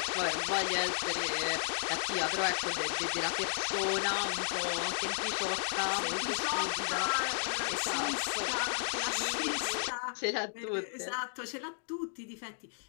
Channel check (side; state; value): right; silent; digital silence